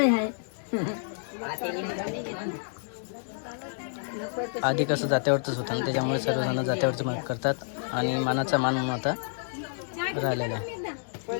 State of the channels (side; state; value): right; silent; 59 dB below the other